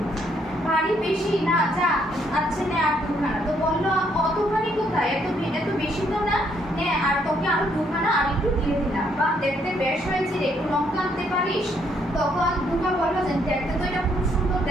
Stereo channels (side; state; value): both; normal; correlation 0.71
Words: ভারী বেশি না, যা আচ্ছা নে আর দুখানা। তো বললো অতখানি কোথায়, এত বেশি তো না, নে আর তোকে আরো দুখানা আর একটু দিয়ে দিলাম। বা দেখতে বেশ হয়েছে রে, একটু লঙ্কা আনতে পারিস? তখন দুর্গা বললো যে দেখতে তো এটা খুব সুন্দর